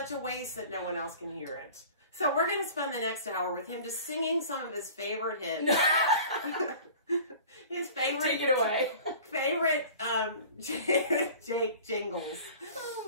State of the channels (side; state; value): both; inverted; correlation -0.43